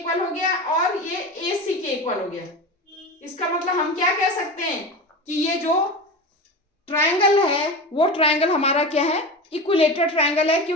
हो गया और ये ए सी के इक्वल हो गया। इसका मतलब हम क्या कह सकते हैं कि ये जो ट्रायंगल है वो ट्रायंगल हमारा क्या है, इक्विलेटरल ट्रायंगल है,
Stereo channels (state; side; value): normal; both; correlation 0.27